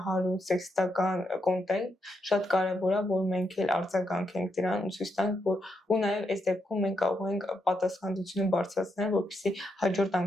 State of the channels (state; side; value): normal; both; correlation 0.81